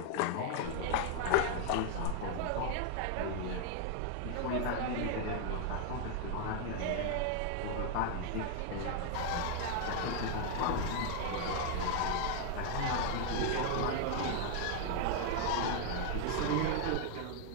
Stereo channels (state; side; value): different; both; correlation 0.00